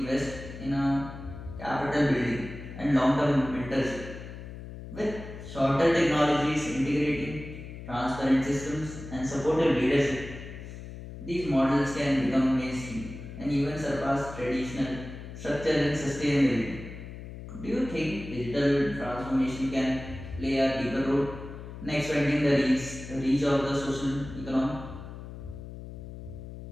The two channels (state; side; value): noise; left; hum, 12 dB below the sound